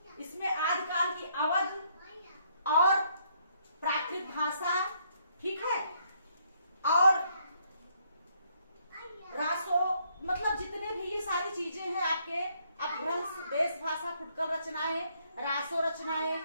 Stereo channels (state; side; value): inverted; both; correlation -0.70